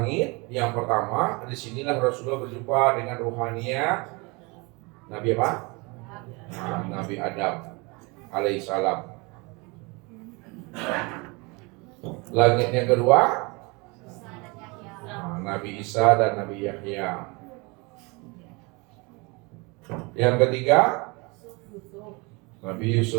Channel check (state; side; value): quieter; left; 27.7 dB